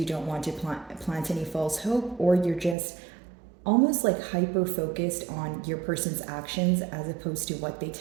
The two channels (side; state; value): left; drops out; at 2.8 s